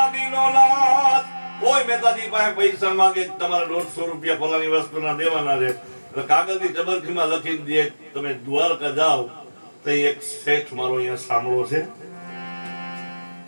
નાથ. કોઈ મહેતાજી પાસે પૈસા માંગે તમારે 150 રૂપિયા ફલાની વસ્તુના દેવાના છે. કાગળની ટબરખીમાં લખી દે. તમે દ્વારકા જાઓ તો એક શેઠ મારો અહીંયા સાંભળો છે,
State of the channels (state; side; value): inverted; both; correlation -1.00